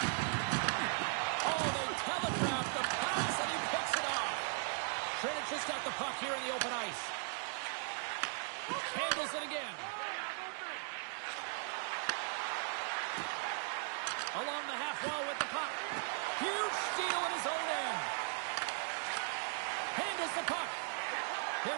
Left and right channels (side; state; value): left; silent; 52 dB below the other